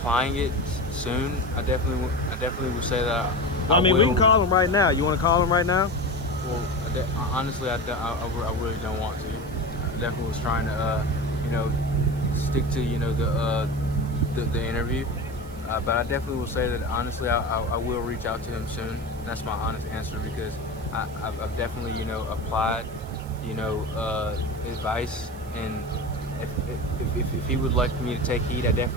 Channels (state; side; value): noise; right; hiss, 23 dB below the sound